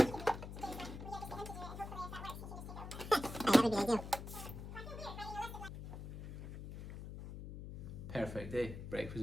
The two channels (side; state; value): left; noise; hum, 9 dB below the sound